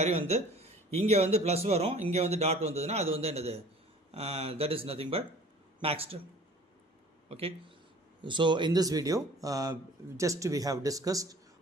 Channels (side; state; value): both; normal; correlation 0.48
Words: வந்து இங்கே வந்து ப்ளஸ் வரும், இங்கே வந்து டாட் வந்ததுன்னா அது வந்து என்னது, that is nothing but max term. Okay, so in this video just we have discussed